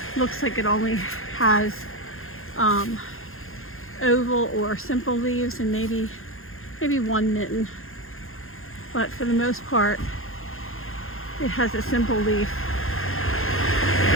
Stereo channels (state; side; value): late; right; 0.61 ms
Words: looks like it only has oval or simple leaves and maybe 1 mitten. But for the most part, it has a simple leaf.